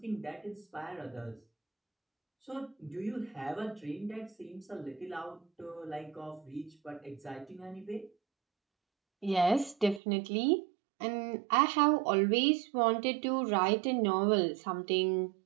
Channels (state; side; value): drops out; left; at 10.0 s